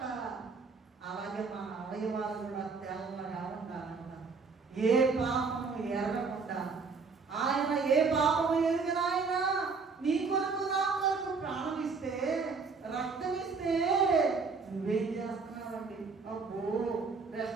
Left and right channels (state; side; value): quieter; left; 4.7 dB